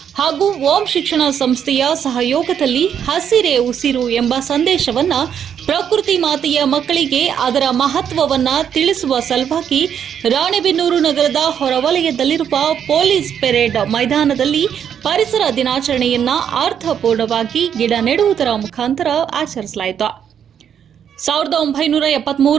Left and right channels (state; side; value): quieter; left; 8.5 dB